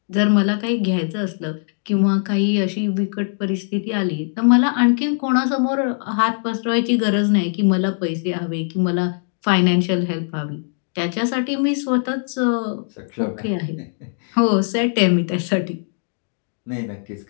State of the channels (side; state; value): right; silent; 60 dB below the other